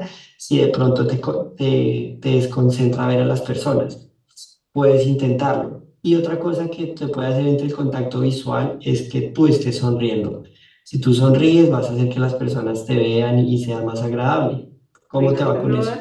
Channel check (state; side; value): identical; both; correlation 1.00